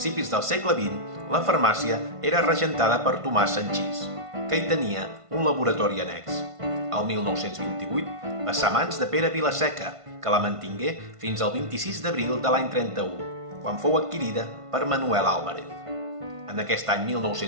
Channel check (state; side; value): late; left; 1.5 ms